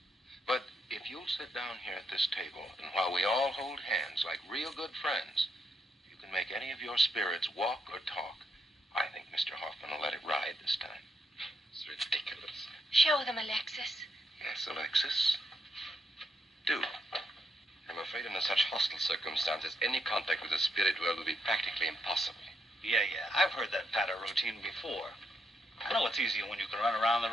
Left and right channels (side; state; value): both; normal; correlation 0.78